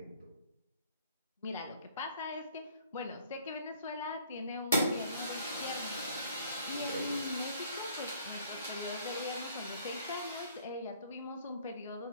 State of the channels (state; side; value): inverted; both; correlation -0.57